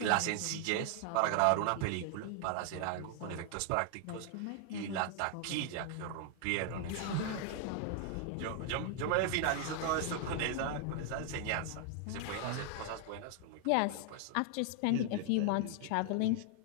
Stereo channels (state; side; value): different; both; correlation 0.00